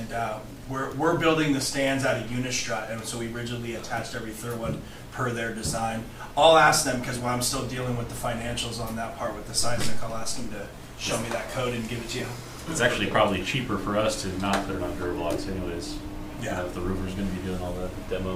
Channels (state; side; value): identical; both; correlation 1.00